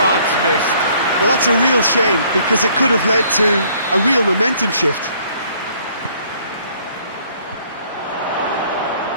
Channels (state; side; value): inverted; both; correlation -0.61